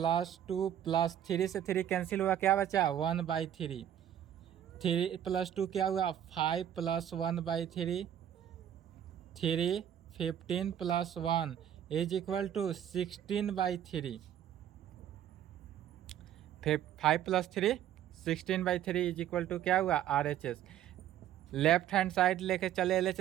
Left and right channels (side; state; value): left; quieter; 10.6 dB